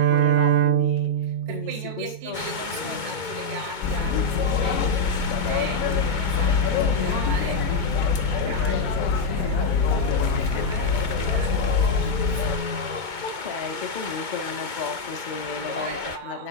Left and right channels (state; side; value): late; left; 2.2 ms